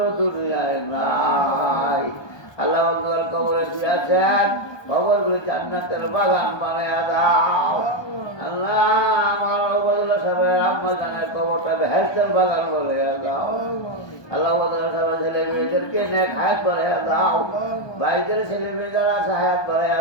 দুনিয়ায় নাই। আল্লাহ বন্ধুর কবরে শুয়েছেন, কবরগুলো জান্নাতের বাগান বানাইয়া দাও। আল্লাহ আমার ওবায়দুল্লাহ সাহেবের আম্মা জানের কবরটা বেহেশতের বাগান বানাইয়া দাও। আল্লাহ ওবায়দুল্লাহ সাহেবের ছেলে মেয়েদেরকে নেক হায়াত বানাইয়া দাও, ভাইদের ছেলে মেয়ে যারা আছে হায়াত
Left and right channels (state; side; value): late; right; 1.2 ms